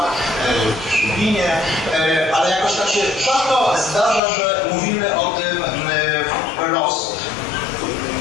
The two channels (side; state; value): right; drops out; at 4.2 s